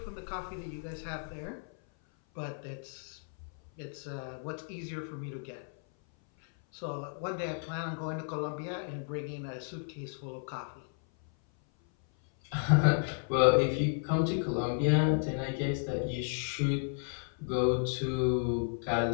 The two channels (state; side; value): silent; right; 56 dB below the other